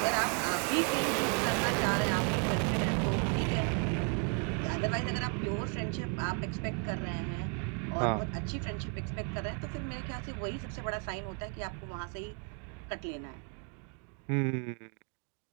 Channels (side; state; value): left; quieter; 39.1 dB